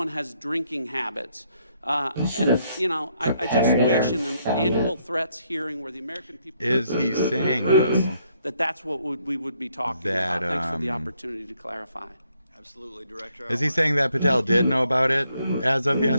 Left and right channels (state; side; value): inverted; both; correlation -0.72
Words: has drinking habits. I just wish in an annual threats hearing where the American people Is he saying that's what we would be talking about. Thanks for the opportunity to clarify. Absolutely, Director. Is he saying that Patel did know about it as of